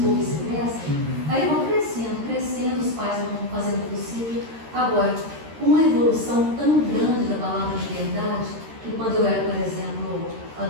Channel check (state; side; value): late; left; 13 ms